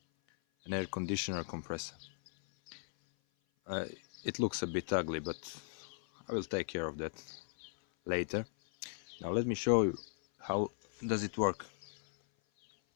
air conditioner compressor. It looks a bit ugly, but I will take care of that later. Now let me show you how does it work.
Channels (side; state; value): right; silent; 53 dB below the other